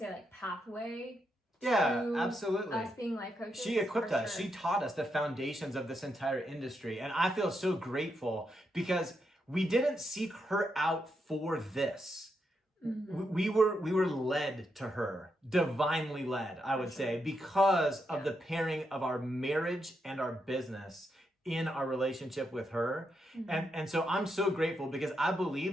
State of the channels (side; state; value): both; normal; correlation 0.82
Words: like pathway? Yeah, absolutely. Us being life coaches. She equipped us. Sure. She taught us the foundations of this entire industry. And I feel so grateful because we didn't seek her out for this. Mm-hmm. We were led to her, divinely led, I would say, because of the pairing of our marriage and our business in our relationship with her. And so I'm so grateful because I